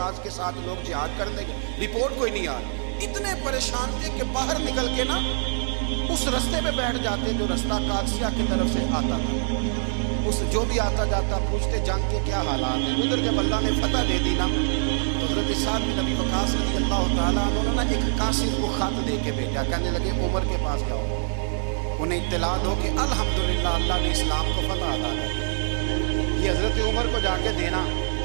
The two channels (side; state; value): left; silent; digital silence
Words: کے ساتھ لوگ جہاد کرنے گئے، رپورٹ کوئی نہیں آ رہی۔ اتنے پریشان تھے کہ باہر نکل کے نا اس رستے پہ بیٹھ جاتے جو رستہ قادسیہ کی طرف سے آتا تھا، اس جو بھی آتا جاتا پوچھتے جنگ کے کیا حالات ہیں۔ ادھر جب اللہ نے فتح دے دی نا تو حضرت سعد بن ابی وقاص رضی اللہ تعالیٰ عنہ نے نا ایک قاصد کو خط دے کے بھیجا، کہنے لگے عمر کے پاس جاؤ، انہیں اطلاع دو کہ الحمدللہ اللہ نے اسلام کو فتح عطا کر دی۔ یہ حضرت عمر کو جا کے دینا،